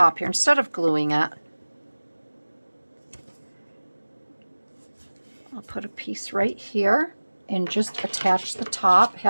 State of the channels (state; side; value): inverted; both; correlation -1.00